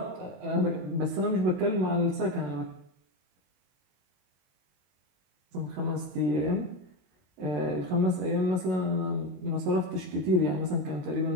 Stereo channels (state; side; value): late; left; 22 ms